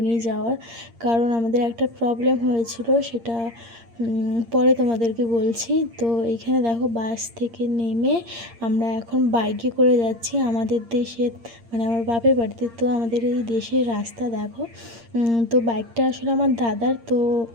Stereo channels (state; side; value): late; left; 8.7 ms